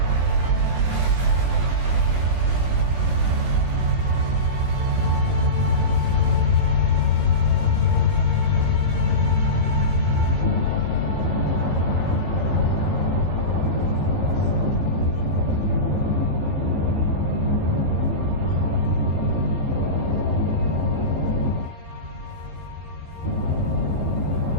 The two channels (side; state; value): left; late; 17 ms